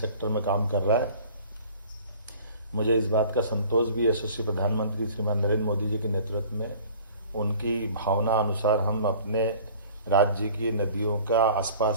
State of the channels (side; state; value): both; inverted; correlation -0.48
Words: में काम कर रहा है। मुझे इस बात का संतोष भी यशस्वी प्रधानमंत्री श्रीमान नरेंद्र मोदी जी के नेतृत्व में उनकी भावना अनुसार हम अपने राज्य की नदियों का